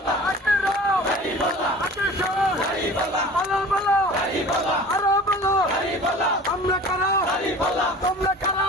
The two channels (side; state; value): both; normal; correlation 0.42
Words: আমরা কারা তোমরা কারা